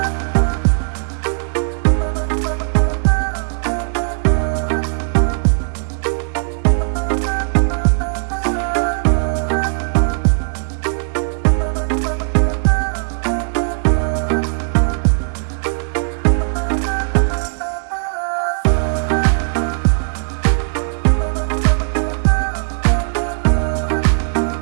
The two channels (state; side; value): silent; left; 61 dB below the other